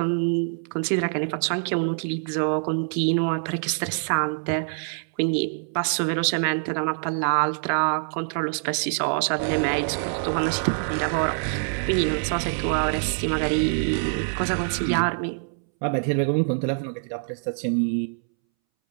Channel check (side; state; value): left; silent; 62 dB below the other